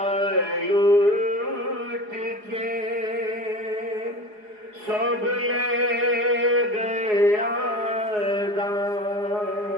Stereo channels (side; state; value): left; late; 4.8 ms